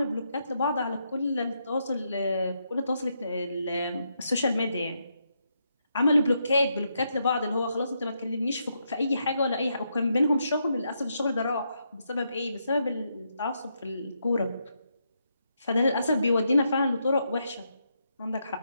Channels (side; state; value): both; inverted; correlation -0.80